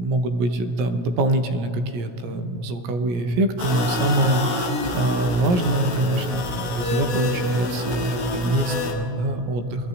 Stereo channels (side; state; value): left; late; 17 ms